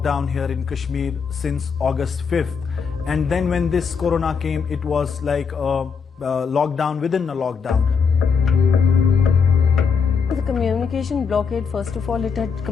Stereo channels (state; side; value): quieter; right; 5.9 dB